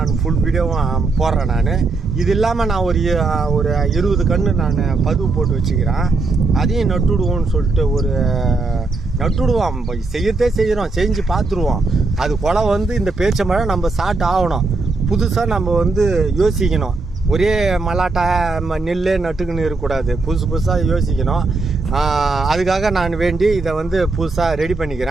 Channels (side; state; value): left; quieter; 3.6 dB